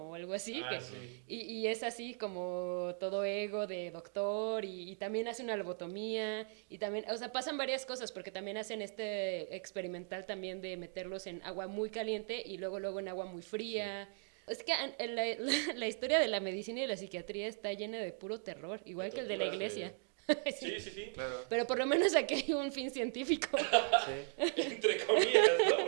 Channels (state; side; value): silent; left; 52 dB below the other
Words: o algo así, Sí. y es así como todo ego de doctor y también hace una lobotomía y también, o sea, pasan varias cosas porque también hacen este experimental también de meterlos en agua muy caliente y luego en agua muy fría. Sí. Es que la historia de la medicina y la psiquiatría está llena de puro terror, igual que el de la iglesia. Sí, sí, sí. Claro. Pero por lo menos aquí hay un fin científico. Sí. Entre comillas, ¿no?